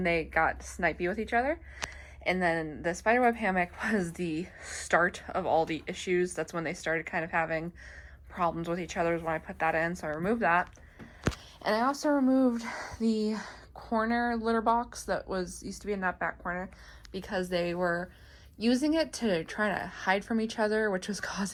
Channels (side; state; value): both; identical; correlation 1.00